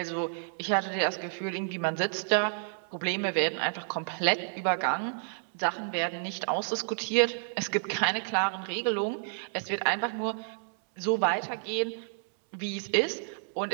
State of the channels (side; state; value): left; silent; 58 dB below the other